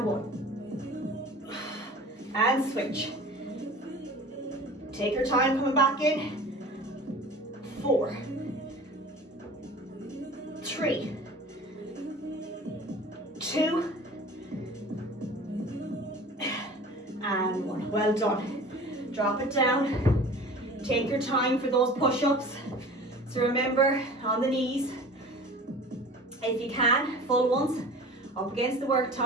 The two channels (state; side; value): normal; both; correlation 0.41